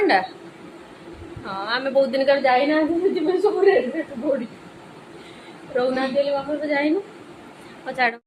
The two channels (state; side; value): identical; both; correlation 1.00